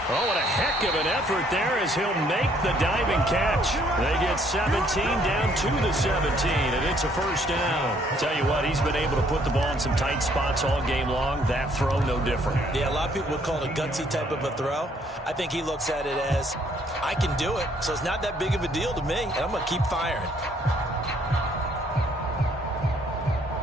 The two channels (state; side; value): normal; both; correlation 0.65